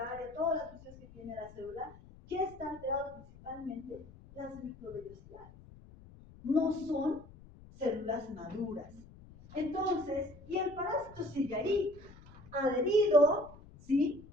todas las funciones que tiene la célula? ¿Qué está alterado principalmente? Las microvellosidades. No son células maduras. Entonces, y el parásito sigue ahí, adherido, ¿sí?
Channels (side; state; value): left; noise; rumble, 20 dB below the sound